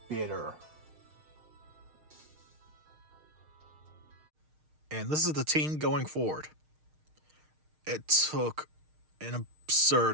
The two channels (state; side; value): late; left; 6.5 ms